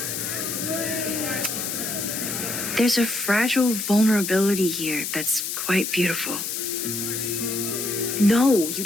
There's a fragile vulnerability here that's quite beautiful. No, you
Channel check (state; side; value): noise; left; hiss, 3 dB below the sound